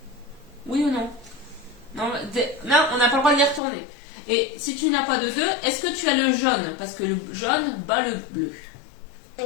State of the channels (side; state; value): right; drops out; at 3.6 s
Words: Oui ou non? Non, on n'a pas le droit de les retourner. Et si tu n'as pas de 2, est-ce que tu as le jaune? Parce que le jaune bat le bleu.